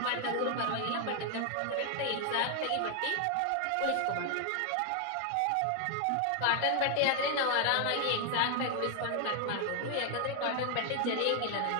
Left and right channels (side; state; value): both; different; correlation 0.00